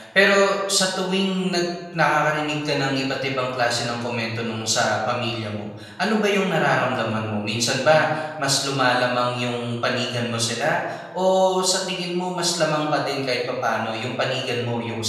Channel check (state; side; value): identical; both; correlation 1.00